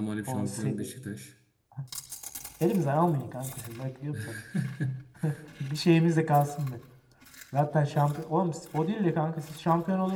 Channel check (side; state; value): both; identical; correlation 1.00